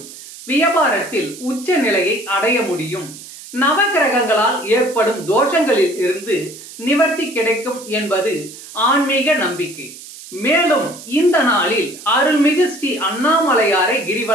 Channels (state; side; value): noise; right; hiss, 16 dB below the sound